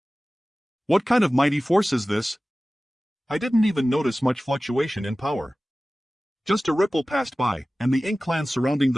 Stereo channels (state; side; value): normal; both; correlation 0.97